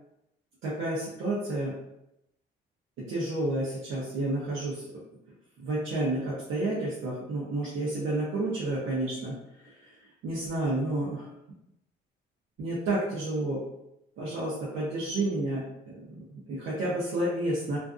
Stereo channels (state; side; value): normal; both; correlation 0.52